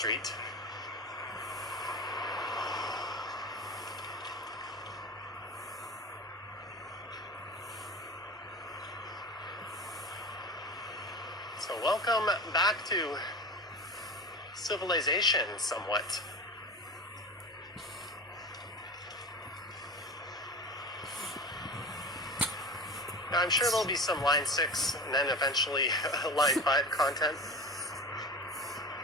So welcome back to civilization somewhat. Now, I'm sure there'll be some line 6 and then eventually line 5 content.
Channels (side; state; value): both; normal; correlation 0.32